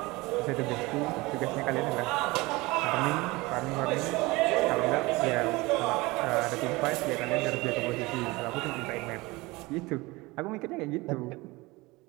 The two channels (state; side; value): quieter; left; 22.4 dB